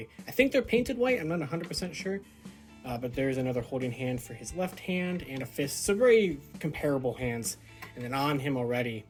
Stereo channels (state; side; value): identical; both; correlation 1.00